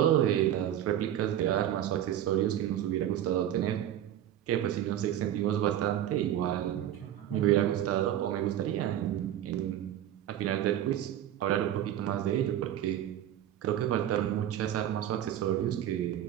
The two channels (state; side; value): quieter; left; 11.5 dB